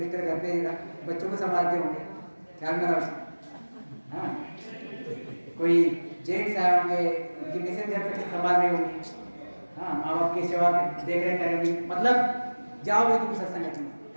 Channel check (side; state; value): both; inverted; correlation -1.00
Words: घर पे बच्चों को संभालते होंगे, ख्याल में रखो। हाँ, कोई जेंट्स आए होंगे, उनकी मिसेज घर पे संभाल रही होंगी, हाँ, माँ बाप की सेवा देख रेख करेंगी। मतलब जाओगे तुम सत्संगत में,